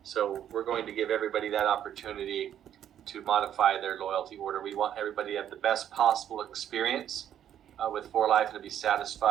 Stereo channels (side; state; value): left; quieter; 10.2 dB